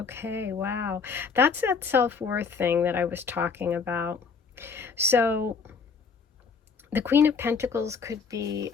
wow. That's that self-worth thing that I was talking about. So the Queen of Pentacles could be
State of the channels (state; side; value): quieter; right; 5.4 dB